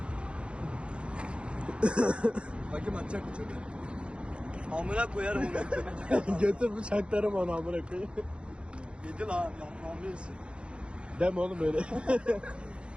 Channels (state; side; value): late; left; 0.057 ms